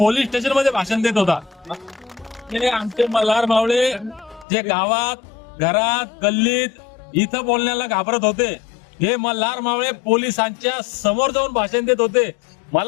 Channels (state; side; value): drops out; right; at 4.5 s